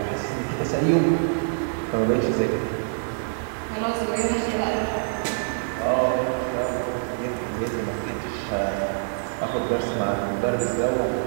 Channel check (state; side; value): silent; left; digital silence